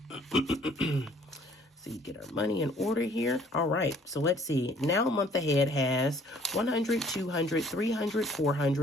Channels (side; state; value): both; normal; correlation 0.58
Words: So you get our money in order here. All right, so let's see. Now month ahead has 100, 200, 300,